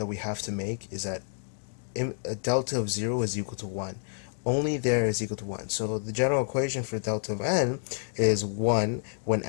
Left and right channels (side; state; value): right; silent; 59 dB below the other